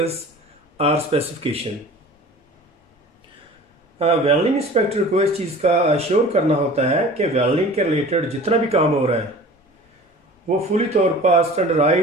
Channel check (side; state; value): both; normal; correlation 0.42